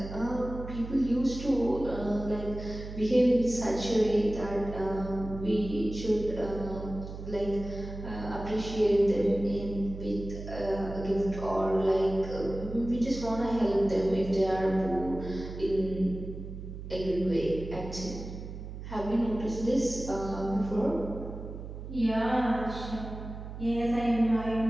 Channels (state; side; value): noise; right; hum, 10 dB below the sound